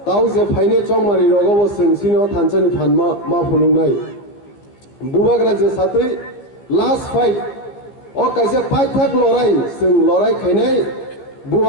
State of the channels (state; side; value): late; right; 15 ms